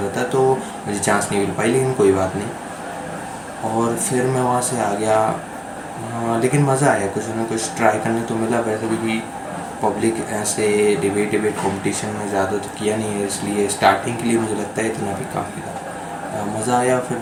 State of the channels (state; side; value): identical; both; correlation 1.00